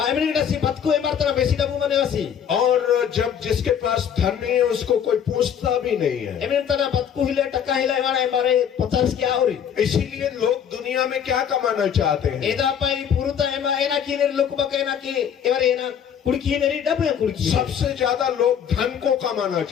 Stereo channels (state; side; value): quieter; right; 8.4 dB